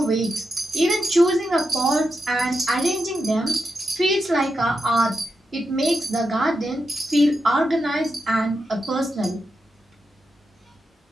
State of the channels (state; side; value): normal; both; correlation 0.86